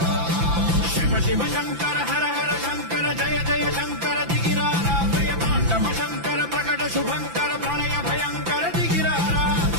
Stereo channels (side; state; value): left; late; 5.9 ms